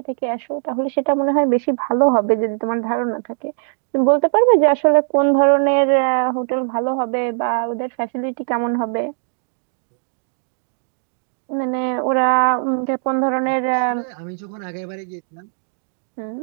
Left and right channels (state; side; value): silent; left; digital silence